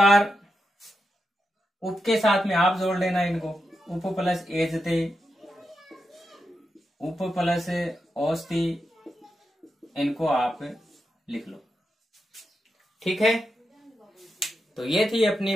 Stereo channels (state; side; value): normal; both; correlation 0.87